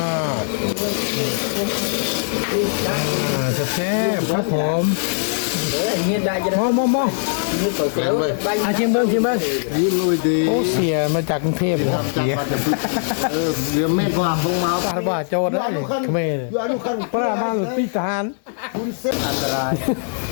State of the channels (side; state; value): right; silent; digital silence